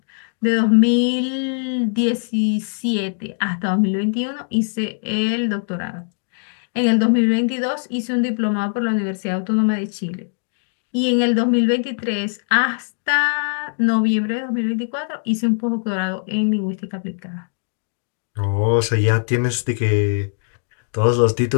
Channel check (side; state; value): right; silent; digital silence